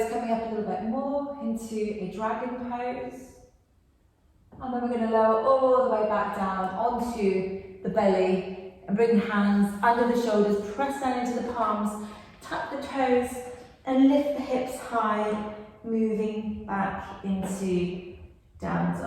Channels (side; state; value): both; identical; correlation 1.00